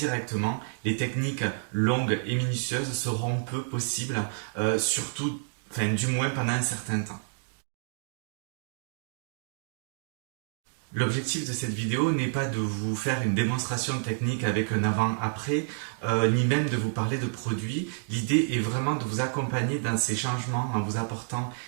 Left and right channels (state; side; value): silent; left; digital silence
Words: les techniques longues et minutieuses seront peu possibles, du moins pendant un certain temps. L'objectif de cette vidéo n'est pas de vous faire une démonstration technique avec un avant-après, ni même de vous parler de produits. L'idée est vraiment de vous accompagner dans ces changements en vous apportant